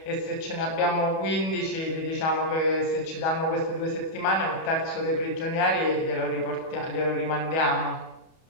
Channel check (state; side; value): late; right; 31 ms